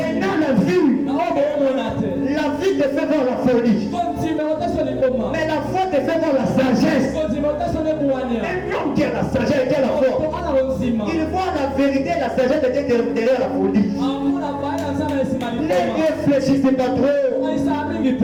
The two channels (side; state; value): both; identical; correlation 1.00